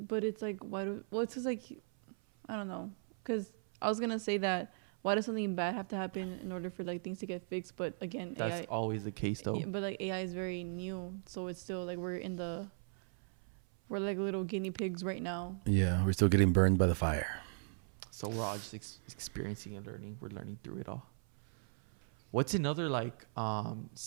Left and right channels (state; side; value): silent; left; 53 dB below the other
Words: it's like it's just like I don't know, because I was gonna say that why does something bad have to happen in order for like things to get fixed? But again, that's AI, always the case, though. yeah, but like AI is very new, so it's still like we're like little guinea pigs right now. Yeah, we're still getting burned by the fire. So we're all just experiencing and learning. We're learning through it all. What's another like